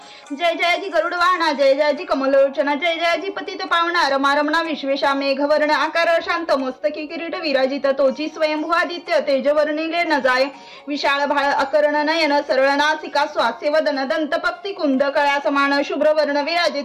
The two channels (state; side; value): identical; both; correlation 1.00